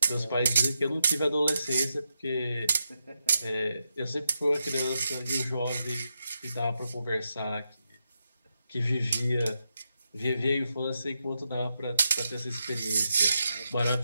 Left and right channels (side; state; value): both; inverted; correlation -0.85